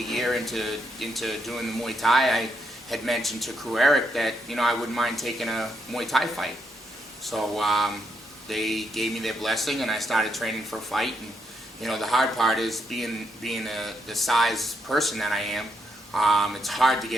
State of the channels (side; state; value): both; normal; correlation 0.79